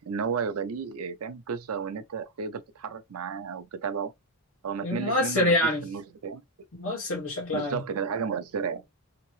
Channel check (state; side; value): normal; both; correlation -0.03